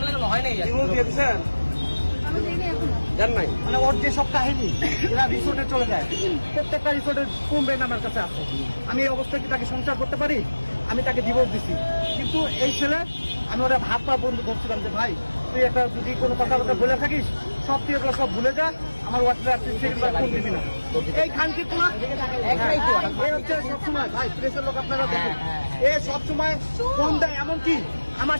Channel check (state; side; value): inverted; both; correlation -1.00